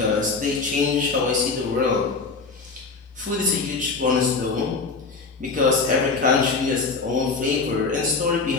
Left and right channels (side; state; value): right; quieter; 4.3 dB